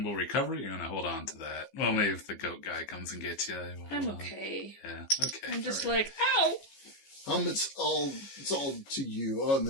recovery? You're gonna hold on to that. Well, maybe if the goat guy comes and gets you, we'll I'm hold on. okay. Yeah. Okay. I'm just All right. like, ow. It's all to you. Oh, and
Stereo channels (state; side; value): late; right; 15 ms